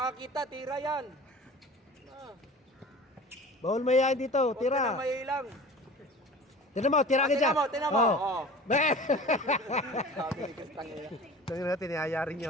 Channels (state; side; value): normal; both; correlation 0.40